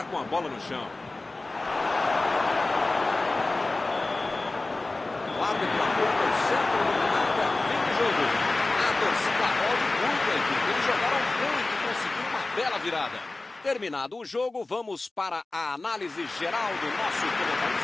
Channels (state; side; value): quieter; right; 3.1 dB